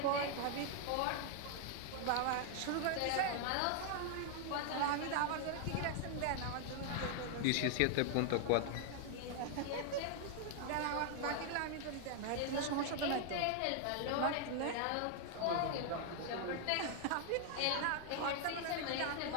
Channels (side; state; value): both; different; correlation 0.00